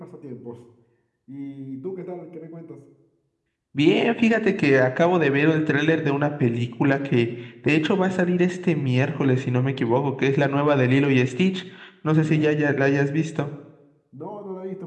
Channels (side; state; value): both; identical; correlation 1.00